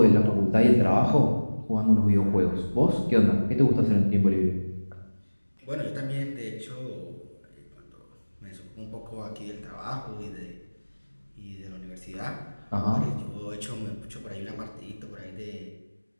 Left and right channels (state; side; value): inverted; both; correlation -1.00